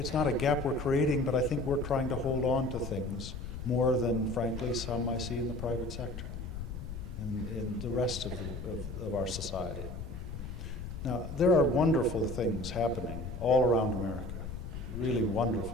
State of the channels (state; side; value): noise; left; rumble, 8 dB below the sound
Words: not a gap we're creating, but I think we're trying to hold on to things more than, frankly, some I see in the private sector and in the rest of our society. Now, there are wonderful things happening all around America, really